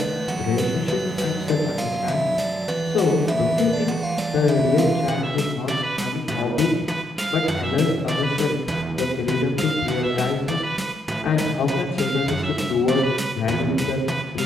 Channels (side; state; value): both; normal; correlation 0.79